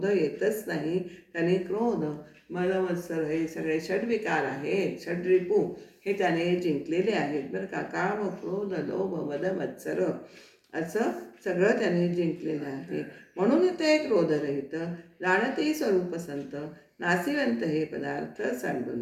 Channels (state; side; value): identical; both; correlation 1.00